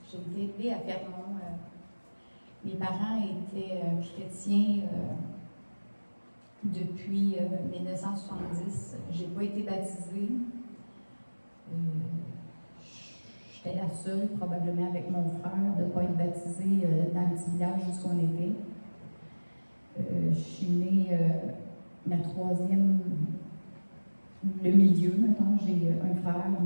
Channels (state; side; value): inverted; both; correlation -1.00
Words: J'ai été élevée à Fermont. Mes parents étaient chrétiens depuis 1970. Je n'ai pas été baptisée. J'étais la seule, probablement avec mon frère, de ne pas être baptisée dans le petit village où on était. Je suis née la troisième, le milieu, maintenant. J'ai un frère,